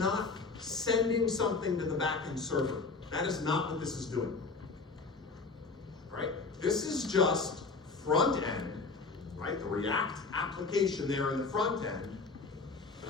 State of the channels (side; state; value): right; quieter; 4.2 dB